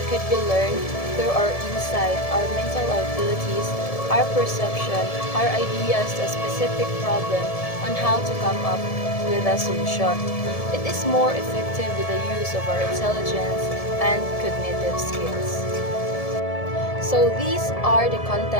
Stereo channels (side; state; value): right; late; 1.7 ms